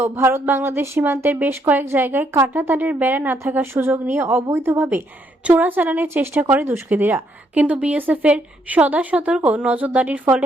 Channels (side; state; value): both; normal; correlation 0.73